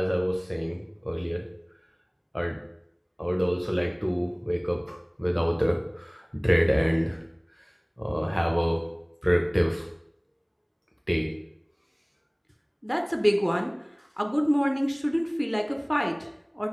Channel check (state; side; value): identical; both; correlation 1.00